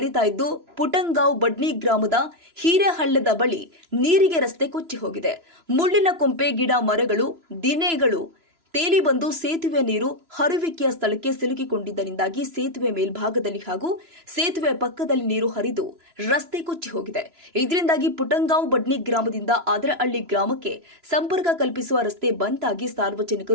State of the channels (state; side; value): late; left; 3.0 ms